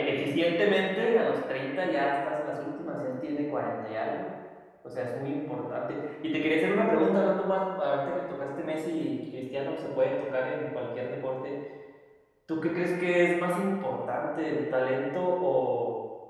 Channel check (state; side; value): identical; both; correlation 1.00